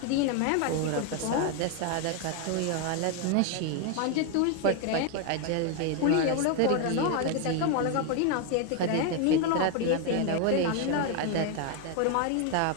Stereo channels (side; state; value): both; different; correlation 0.01